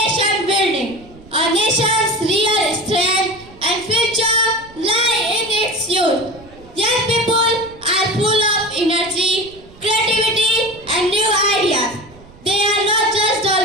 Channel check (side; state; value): right; noise; rumble, 23 dB below the sound